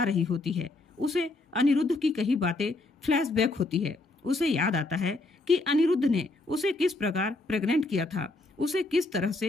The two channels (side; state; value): right; quieter; 3.1 dB